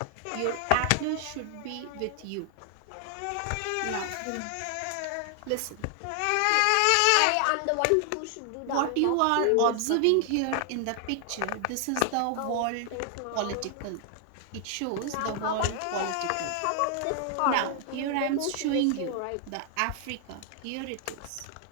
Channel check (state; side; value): different; both; correlation 0.00